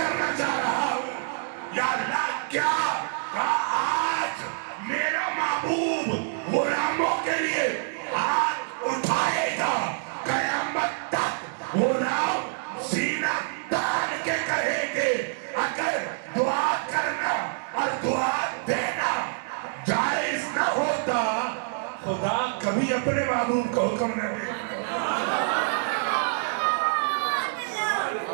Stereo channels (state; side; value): silent; left; digital silence